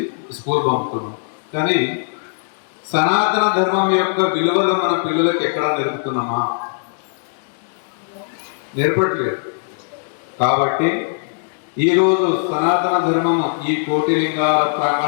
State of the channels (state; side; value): silent; right; digital silence